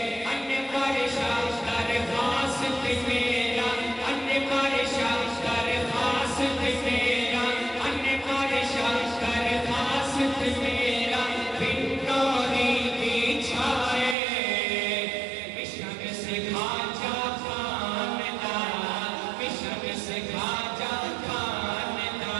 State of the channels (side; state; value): left; drops out; at 14.2 s